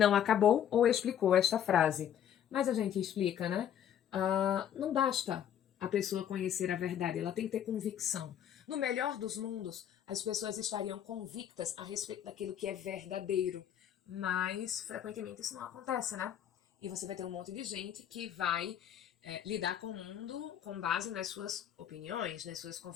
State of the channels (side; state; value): right; quieter; 9.8 dB